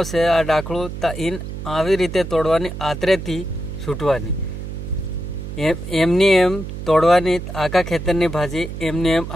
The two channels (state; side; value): noise; right; hum, 8 dB below the sound